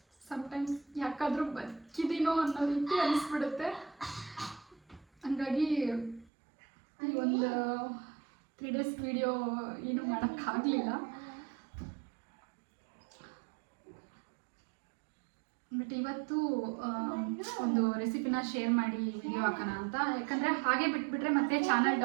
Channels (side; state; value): left; drops out; at 6.3 s